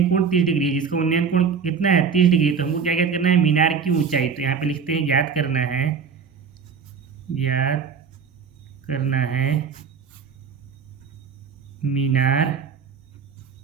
कोण 30 डिग्री है। जिसका उन्नयन कोण कितना है, 30 डिग्री। तो हमको क्या याद करना है, मीनार की ऊंचाई। तो यहाँ पे लिखते हैं याद करना है, याद करना है मीनार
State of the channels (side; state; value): left; quieter; 6.1 dB